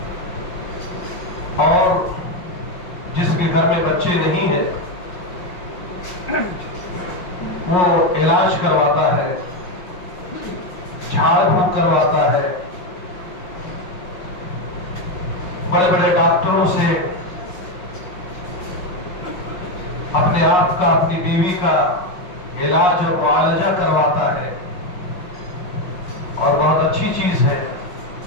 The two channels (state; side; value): late; right; 5.5 ms